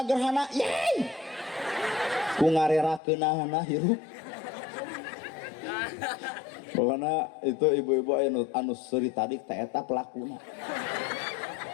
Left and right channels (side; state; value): right; drops out; at 3.0 s